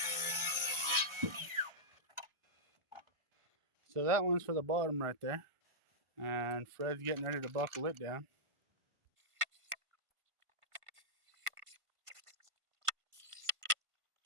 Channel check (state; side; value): late; left; 1.5 ms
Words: So that one's for the bottom right there. And Fred's getting ready to buckle it down.